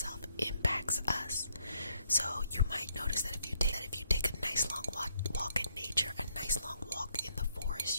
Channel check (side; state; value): both; inverted; correlation -0.73